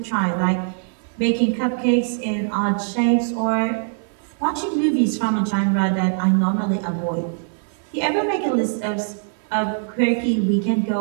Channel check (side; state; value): left; silent; 61 dB below the other